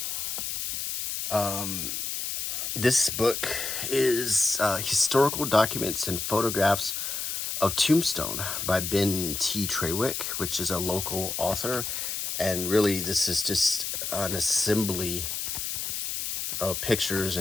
This book is historical documents and photographs of Tombstone by Ben T. Trawick, which is a local author. And really, this is just an assembly of pictures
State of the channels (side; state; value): left; noise; hiss, 3 dB below the sound